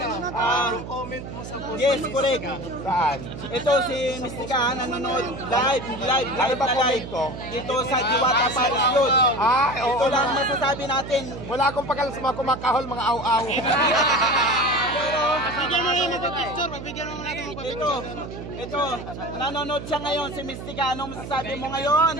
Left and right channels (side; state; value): right; noise; hum, 10 dB below the sound